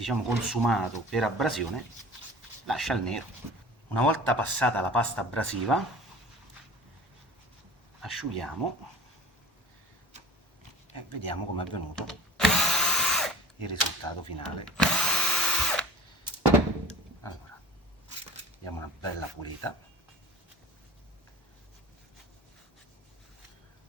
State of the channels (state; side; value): normal; both; correlation 0.41